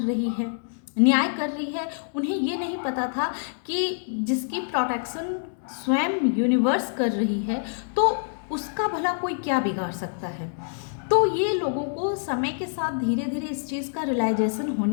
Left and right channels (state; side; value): silent; right; digital silence